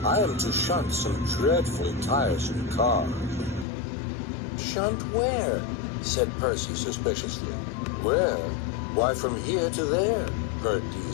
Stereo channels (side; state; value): right; drops out; at 3.7 s